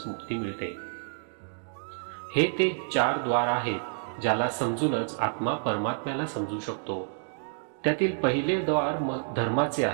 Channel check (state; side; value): silent; left; digital silence